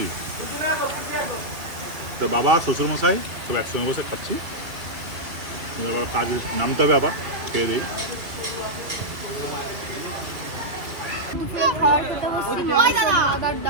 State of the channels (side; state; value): left; late; 2.6 ms